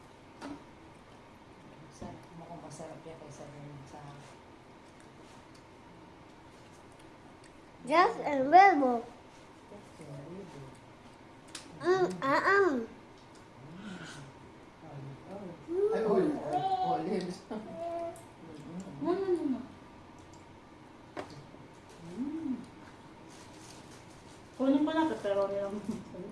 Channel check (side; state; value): both; identical; correlation 1.00